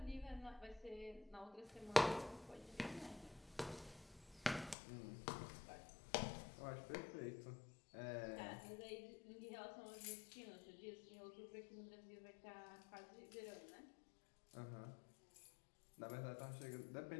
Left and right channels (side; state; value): right; drops out; at 4.8 s